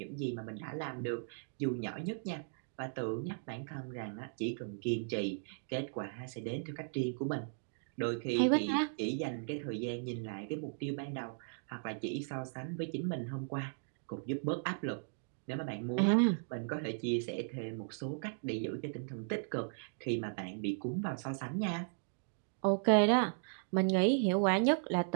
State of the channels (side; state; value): left; silent; digital silence